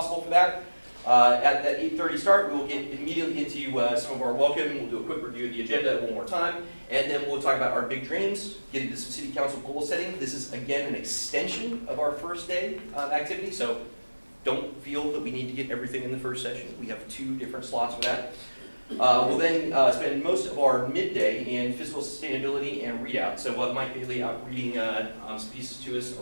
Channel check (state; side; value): inverted; both; correlation -1.00